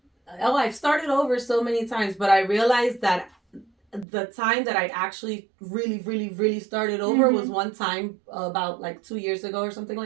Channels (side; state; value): left; drops out; at 4.0 s